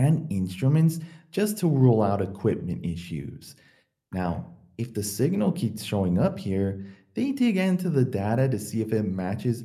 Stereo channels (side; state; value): both; identical; correlation 1.00